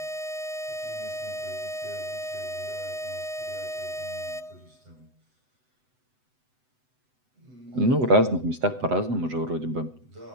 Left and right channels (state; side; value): late; left; 7.9 ms